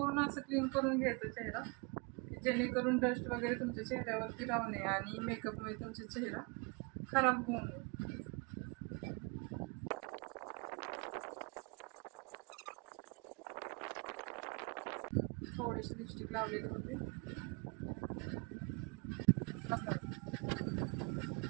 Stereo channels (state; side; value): quieter; left; 31.4 dB